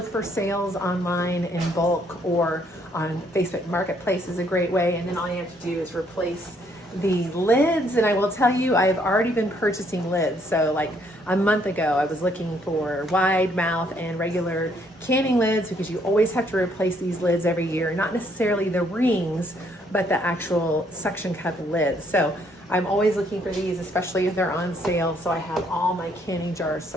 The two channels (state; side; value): normal; both; correlation 0.68